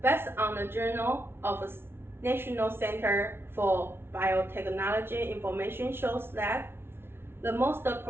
Based on the Journal of the National Center for Biotechnology information shows that the most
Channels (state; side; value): late; left; 0.11 ms